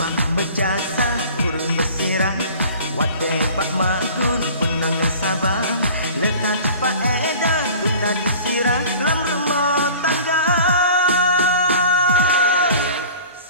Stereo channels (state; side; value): inverted; both; correlation -0.44